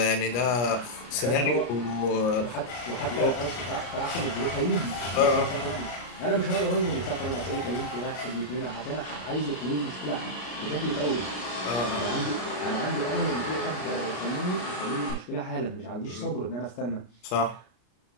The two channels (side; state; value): right; late; 33 ms